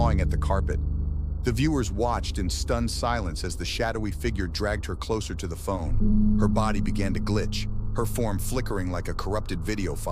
at the carpet. The viewers watched in stunned silence as the shadowy figure dragged her closer to the phone. Her body began to glitch, her form flickering like a corrupted video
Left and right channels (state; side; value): identical; both; correlation 1.00